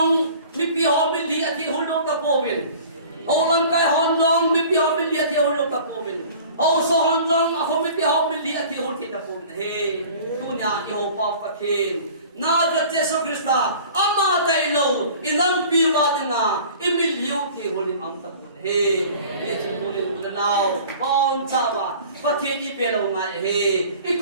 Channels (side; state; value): both; inverted; correlation -0.45